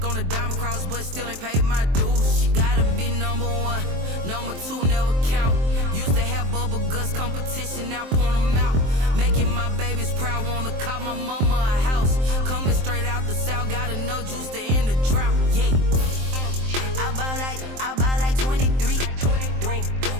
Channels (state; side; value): late; left; 23 ms